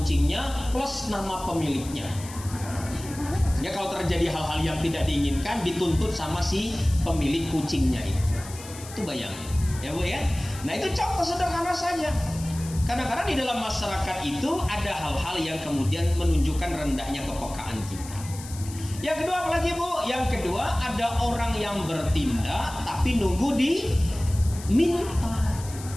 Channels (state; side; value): noise; left; hiss, 15 dB below the sound